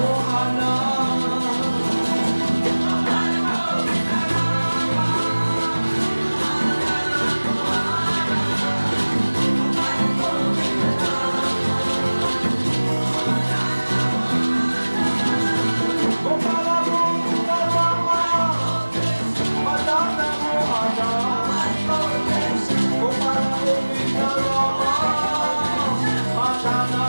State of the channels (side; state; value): both; inverted; correlation -1.00